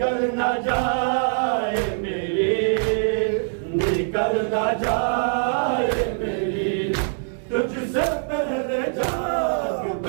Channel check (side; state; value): left; silent; digital silence